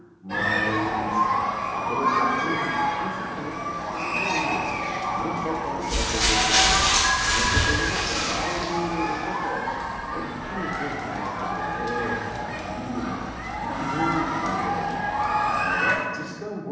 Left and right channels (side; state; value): both; identical; correlation 1.00